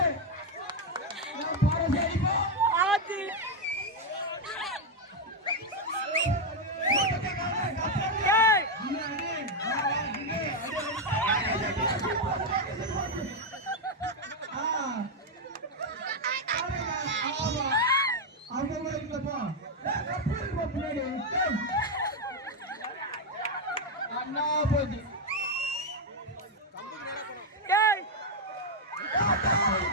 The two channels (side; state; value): both; normal; correlation 0.03